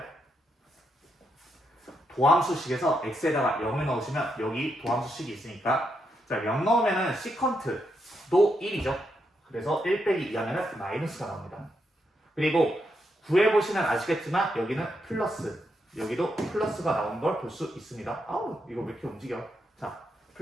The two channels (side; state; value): both; normal; correlation 0.81